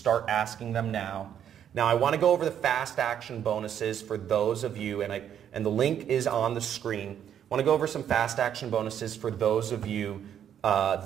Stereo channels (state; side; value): quieter; left; 9.4 dB